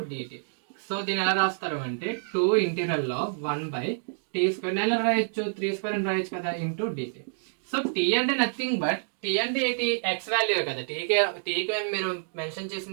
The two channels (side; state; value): left; silent; digital silence